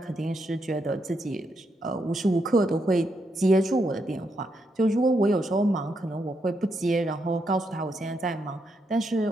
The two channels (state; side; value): normal; both; correlation 0.80